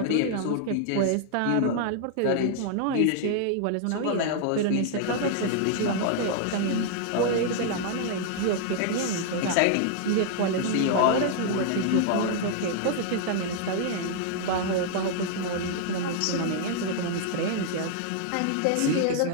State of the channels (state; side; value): different; both; correlation 0.00